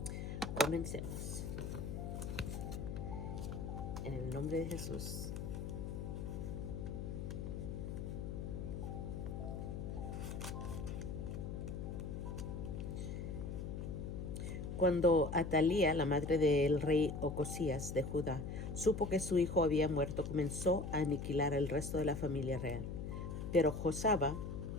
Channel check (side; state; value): left; noise; hum, 5 dB below the sound